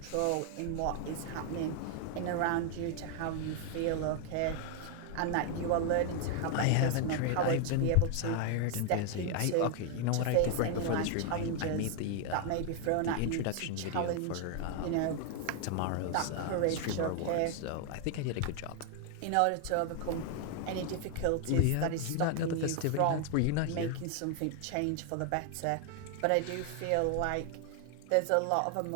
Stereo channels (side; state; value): both; different; correlation 0.00